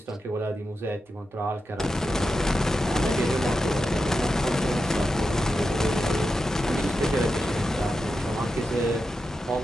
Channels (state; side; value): normal; both; correlation 0.89